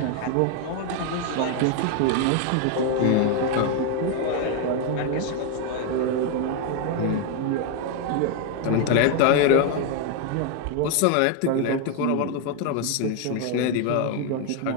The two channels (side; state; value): both; different; correlation 0.01